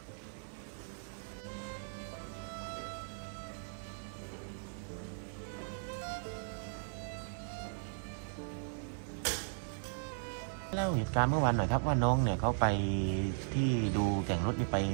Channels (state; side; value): silent; left; 53 dB below the other